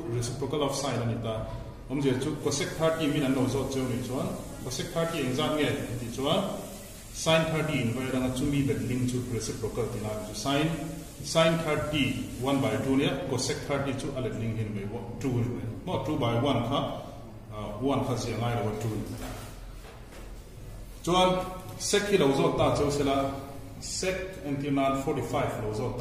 reciprocal of sin ani ta omje chu cosec 30 min an no zo chu ni chuan cosec 30 exam nge ti chuan sin 30 in vai ranga chu mi bet link chu reciprocal ti la chu sin 30 1 by 2 ne cosec 30 chu alet link hin me 2 mo 2 by 1 kha 1 kha zi ngai lo 2 chuan sec hi lo zo ta chu sela sec antinan 45 lo zo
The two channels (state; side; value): identical; both; correlation 1.00